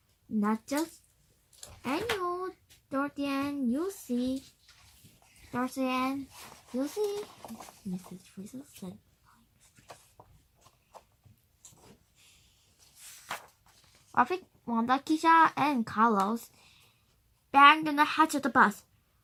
Not just any hole, Dorothy Ann, you'll see. Dorothy Ann, you'll see, Mrs. Frizzle said. Rafi, Wanda, Keisha, and Carlos banged on the hatch of the bus.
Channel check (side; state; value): both; identical; correlation 1.00